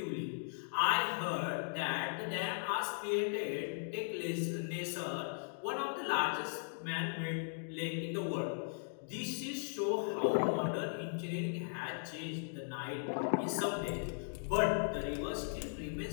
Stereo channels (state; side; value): silent; right; digital silence